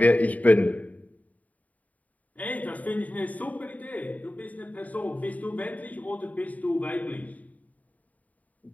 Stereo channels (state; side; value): late; right; 0.072 ms